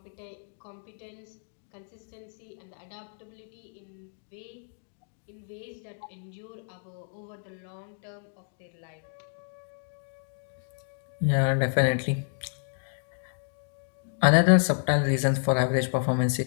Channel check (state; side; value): silent; right; digital silence